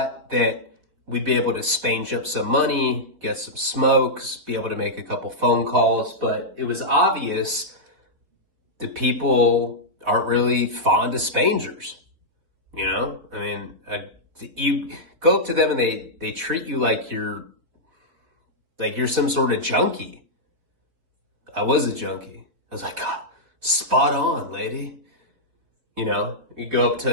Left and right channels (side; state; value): left; late; 3.9 ms